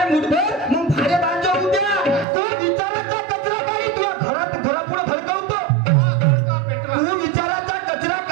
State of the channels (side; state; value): left; drops out; at 2.2 s